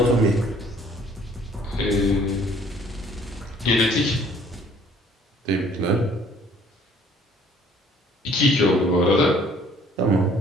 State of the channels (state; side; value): normal; both; correlation 0.58